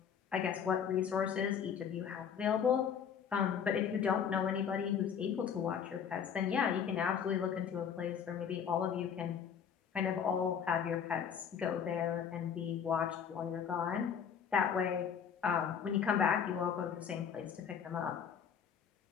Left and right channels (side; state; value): right; quieter; 7.7 dB